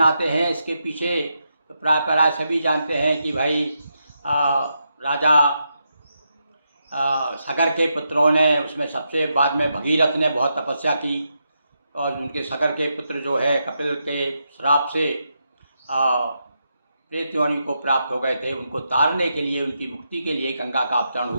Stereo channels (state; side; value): inverted; both; correlation -0.84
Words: हैं, इसके पीछे तो प्राय सभी जानते हैं कि भाई राजा सगर के पुत्रों ने, उसमें सबसे बाद में भगीरथ ने बहुत तपस्या की और उनके सगर के पुत्र जो है कपिल के श्राप से प्रेत योनि को प्राप्त हो गए थे। उनको तारने के लिए, उनकी मुक्ति के लिए गंगा का अवतरण